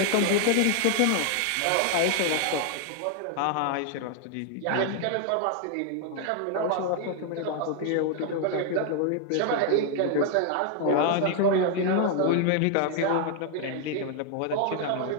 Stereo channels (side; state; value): both; different; correlation 0.00